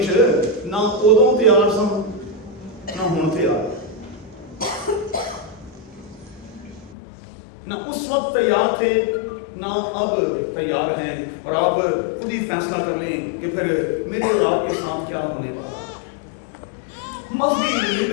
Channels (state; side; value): drops out; right; at 7.0 s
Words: ना उदों तैयार सन ना हुण तैयार, ना उस वक्त तैयार थे ना अब तैयार हैं। और आप खुद ही फैसला कर लें कि फिर मेरे और आपके साथ क्या होने वाला। मजहबी